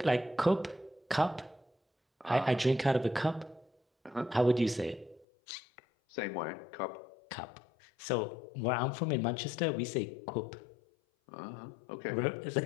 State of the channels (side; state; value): right; drops out; at 5.2 s